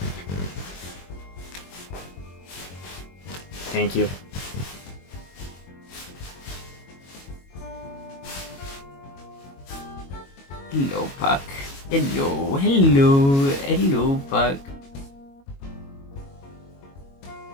Thank you. Hello, Puck. Hello, hello, hello, Puck.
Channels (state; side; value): late; right; 22 ms